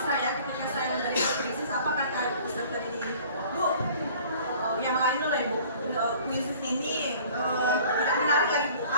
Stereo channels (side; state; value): both; inverted; correlation -0.50